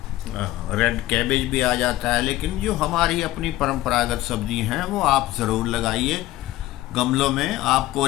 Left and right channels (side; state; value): right; quieter; 16.0 dB